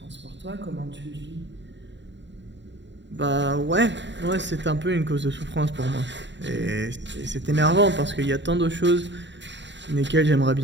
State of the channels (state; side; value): late; left; 0.52 ms